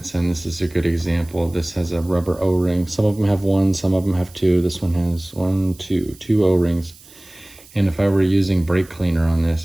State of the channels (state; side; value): noise; right; hiss, 24 dB below the sound